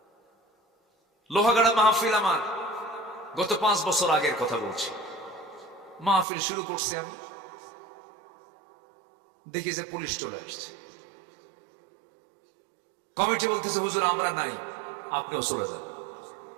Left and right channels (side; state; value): left; drops out; at 6.2 s